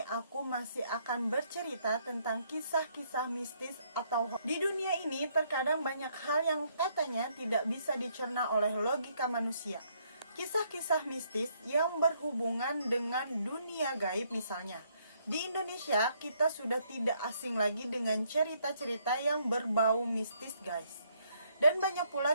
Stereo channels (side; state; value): both; inverted; correlation -0.70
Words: aku masih akan bercerita tentang kisah-kisah mistis atau di dunia ini terkadang banyak hal yang katanya tidak bisa dicerna oleh logika manusia. Kisah-kisah mistis yang berhubungan dengan dunia gaib misalnya. Di Indonesia, kita sudah tidak asing lagi dengan cerita-cerita yang berbau mistis guys. Dan banyak